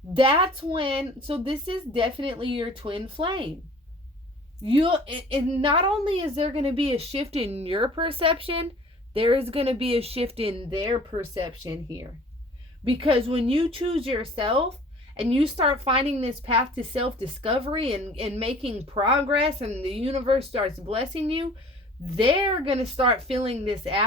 That's when, so this is definitely your twin flame. And not only is there going to be a shift in your perception, there is going to be a shift in their perception here. Because when you choose yourself and you start finding this path to self-discovery and making progress, and the universe starts blessing you, they're going to start feeling this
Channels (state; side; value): normal; both; correlation 0.48